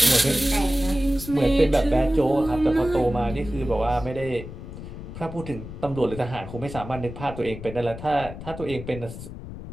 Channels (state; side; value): noise; left; rumble, 11 dB below the sound